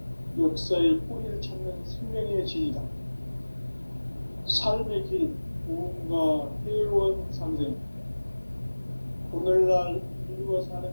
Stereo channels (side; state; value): both; inverted; correlation -1.00